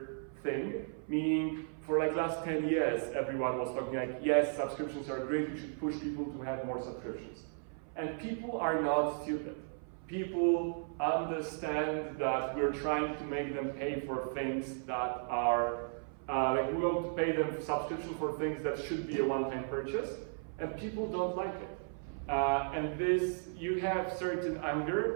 thing, meaning for like last 10 years, everyone was talking like, yes, subscriptions are great, we should push people to have more subscriptions. And people are not stupid. People understand that we're trying to make them pay for things that are, like we want to pay them subscription for things that should be a one-time purchase, and people don't like it. And this, you have certain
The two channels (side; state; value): left; silent; 54 dB below the other